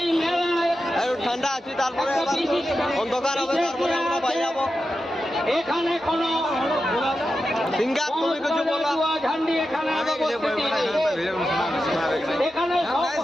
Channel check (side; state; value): both; normal; correlation 0.90